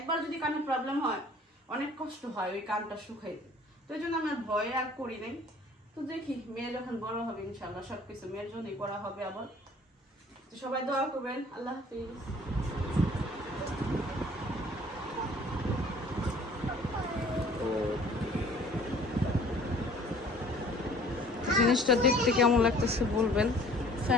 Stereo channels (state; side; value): normal; both; correlation 0.53